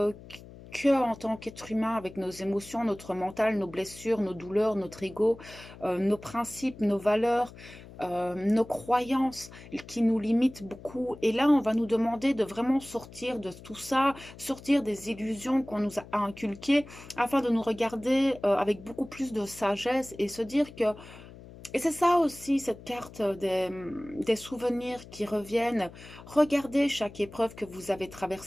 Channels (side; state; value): left; noise; hum, 18 dB below the sound